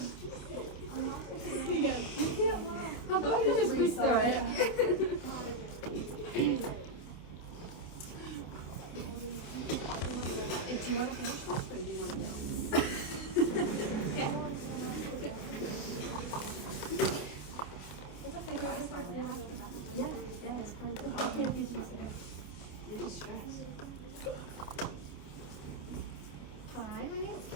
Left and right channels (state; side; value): late; right; 28 ms